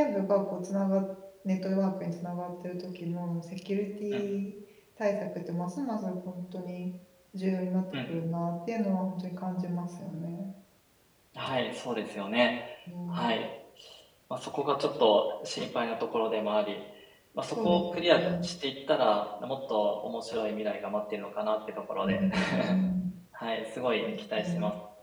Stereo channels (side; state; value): both; identical; correlation 1.00